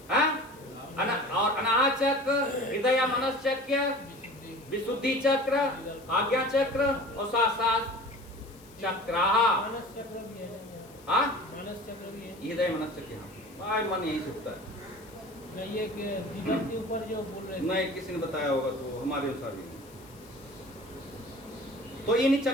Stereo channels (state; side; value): noise; left; hiss, 24 dB below the sound